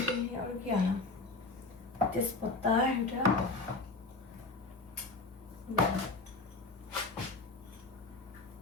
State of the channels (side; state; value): right; quieter; 3.5 dB